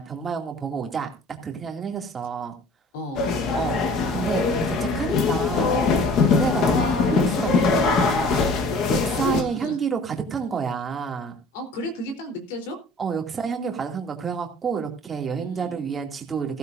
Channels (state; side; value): normal; both; correlation 0.48